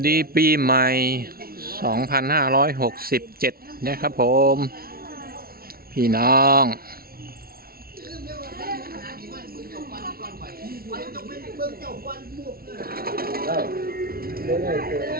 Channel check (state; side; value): late; left; 0.44 ms